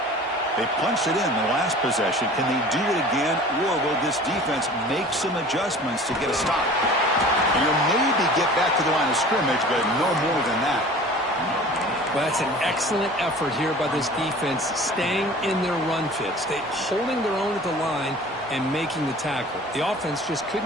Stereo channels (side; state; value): both; normal; correlation 0.43